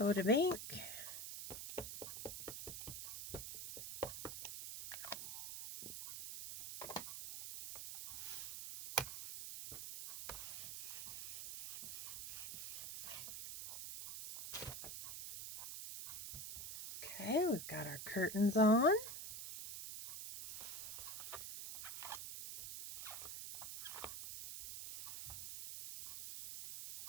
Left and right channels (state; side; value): noise; right; hiss, 6 dB below the sound